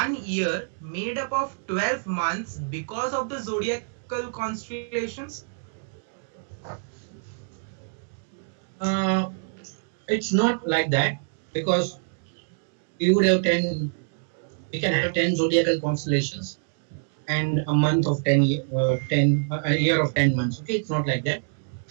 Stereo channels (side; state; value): left; silent; digital silence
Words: year made up of 12 months because of the zodiacal constellations? Uh, it's not like that because we would have 10, we can have 10 zodiacal constellations and a month of 10, a year of 10 months. Okay, it's not like that.